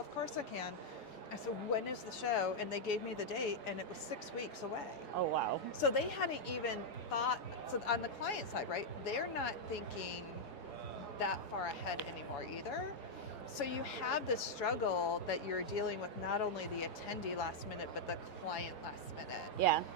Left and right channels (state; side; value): late; right; 4.8 ms